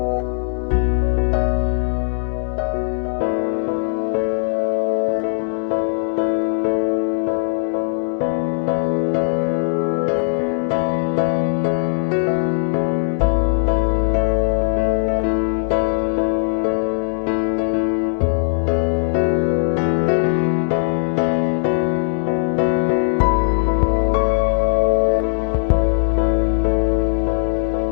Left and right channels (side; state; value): right; silent; 66 dB below the other